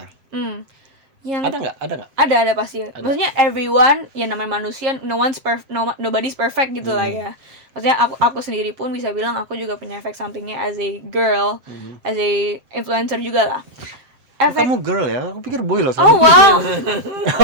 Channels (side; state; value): left; late; 7.4 ms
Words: Yang Ada nggak? ada pasti. Maksudnya everyone, ya namanya manusia, nobody's perfect gitu lah ya. Maksudnya aku sendiri pun bisa bilang aku juga punya efek sampingnya as a girl, as a influencer juga lah. Kamu girl ya? Aku pikir boy loh. Oh wow.